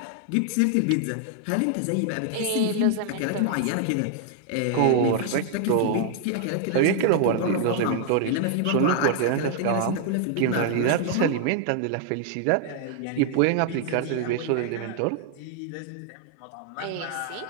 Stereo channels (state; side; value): different; both; correlation 0.00